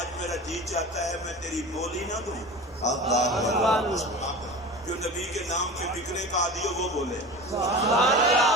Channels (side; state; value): both; normal; correlation 0.33